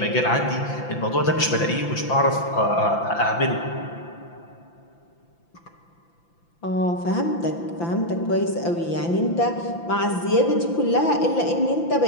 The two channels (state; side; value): late; right; 5.9 ms